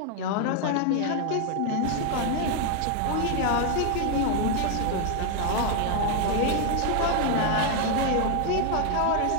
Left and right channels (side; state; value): both; different; correlation 0.00